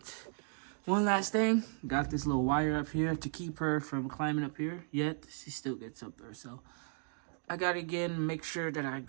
One last thing. Got this little wire up here to keep her from climbing up here. Yet, she still gets up there, so I gotta again make sure that I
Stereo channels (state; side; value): silent; left; 54 dB below the other